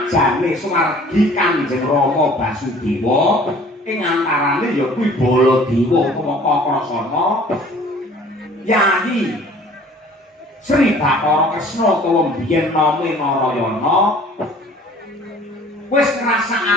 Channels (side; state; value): both; normal; correlation 0.50